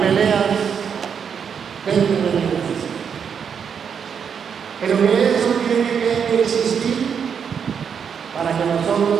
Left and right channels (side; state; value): left; quieter; 7.1 dB